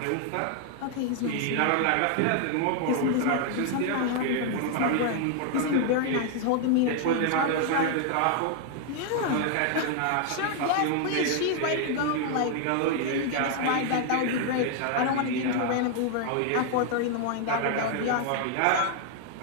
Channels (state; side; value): different; both; correlation 0.00